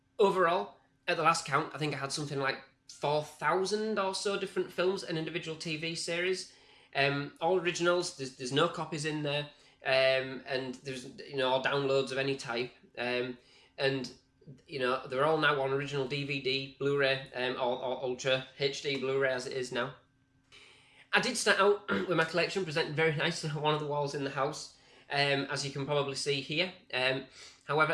Overall, at the last count, I think I had something like 4,000 or so different films and individual TV series. All originals. There's no copies in there, and there's all downloads of any type. And they're all now on original DVD, Blu-ray, or Ultra HD Blu-ray as it is now. I did start out with my collection presented very nicely on one of the walls in the house, as you can probably see here. However,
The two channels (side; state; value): both; identical; correlation 1.00